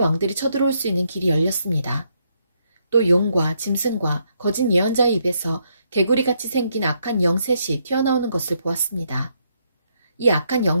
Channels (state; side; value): inverted; both; correlation -0.75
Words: 쳐들어올 수 있는 길이 열렸습니다. 또 용과 짐승과 거짓 예언자의 입에서 개구리같이 생긴 악한 영 셋이 튀어나오는 것을 보았습니다. 이 악한